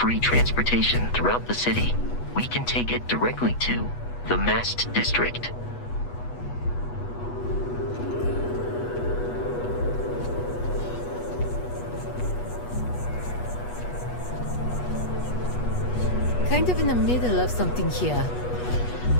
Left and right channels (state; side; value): late; right; 8.2 ms